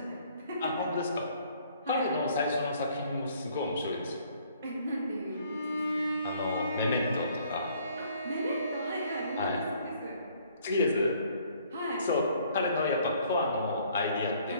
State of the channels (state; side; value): inverted; both; correlation -0.61